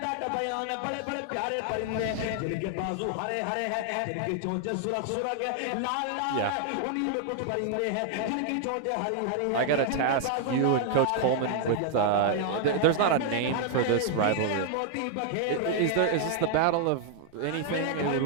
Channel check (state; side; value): different; both; correlation 0.00